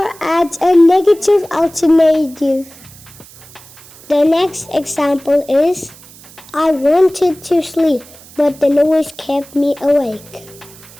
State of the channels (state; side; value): noise; right; hiss, 22 dB below the sound